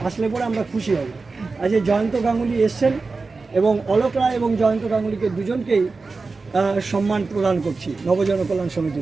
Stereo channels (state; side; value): quieter; left; 4.0 dB